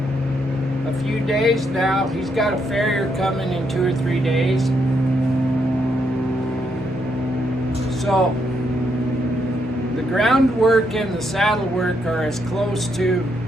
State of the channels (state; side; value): normal; both; correlation 0.77